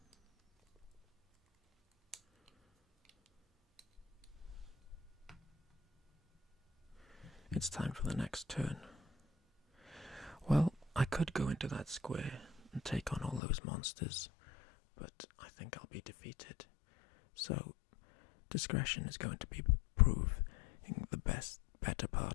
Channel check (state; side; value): drops out; right; at 13.4 s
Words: It's time for the next turn. Well, I could go into that square and take on all those monsters, but I think I'll be defeated. So discretion is going to be proving the better